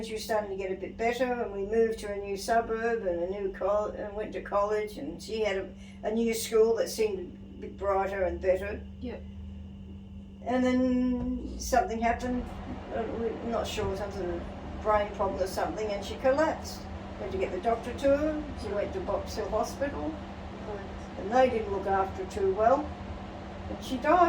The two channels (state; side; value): identical; both; correlation 1.00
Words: she was starting to get a bit better, and we moved to a new suburb and a new and went to college, and she had a new school that seemed a bit brighter and better. Yeah. And then something happened. We're not sure, some sort of brain problem or something, and she collapsed. Went to get the doctor to her. She went to Box Hill Hospital, and they didn't look after her too well, and she